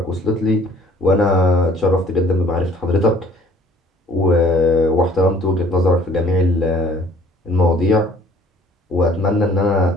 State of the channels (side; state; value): both; normal; correlation 0.55